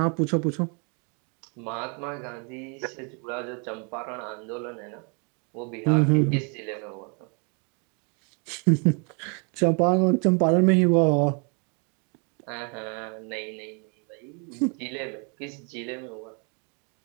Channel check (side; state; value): left; quieter; 36.2 dB